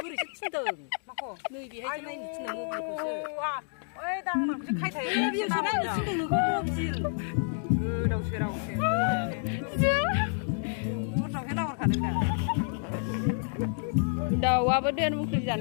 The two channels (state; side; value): silent; right; 58 dB below the other